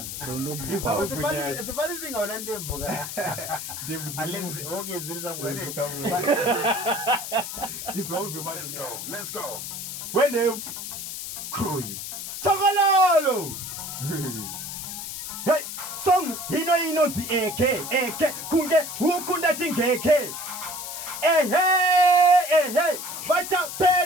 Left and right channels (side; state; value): left; noise; hiss, 7 dB below the sound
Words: the funny thing on Wendevu okay, let's go. When they crew you. Tagalolo! Hey, song, ino the AK, kunge, hukunda tingeke. Hey, vacha